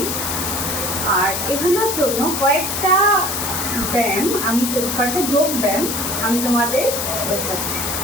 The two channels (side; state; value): left; noise; hiss, 2 dB below the sound